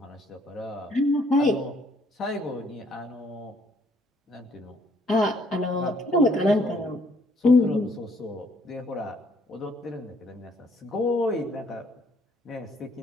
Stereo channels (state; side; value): normal; both; correlation 0.65